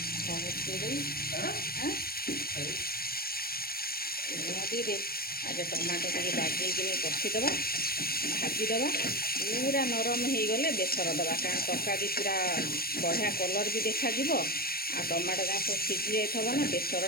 ଦେଇଦେବି ଆଗେ ଟମାଟୋ ଟିକେ ବାଗେଇକିନି କଷିଦେବା, ଭାଜିଦେବା। ପୁରା ନରମ ହେଇଗଲେ ବେସର ଦେବା, କାରଣ ତରକାରୀ ପୁରା ବଢ଼ିଆ କଲର୍ ବି ଦେଖାଯିବ। ଆଉ ଟମାଟୋ ଯାକ ସବୁ ସିଝି ଯାଇଥିବ ନା,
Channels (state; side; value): late; right; 0.44 ms